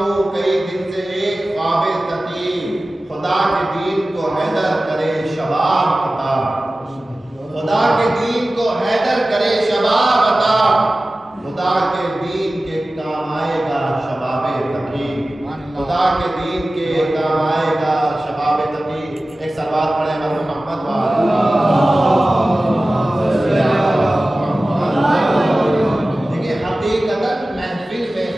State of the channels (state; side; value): normal; both; correlation 0.96